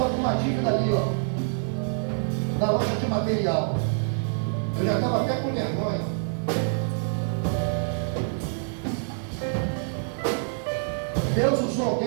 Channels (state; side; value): silent; left; 57 dB below the other